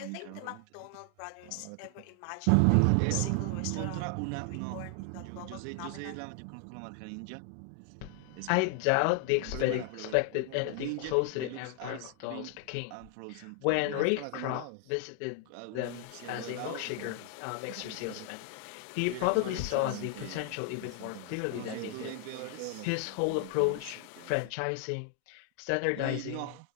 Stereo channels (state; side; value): different; both; correlation 0.00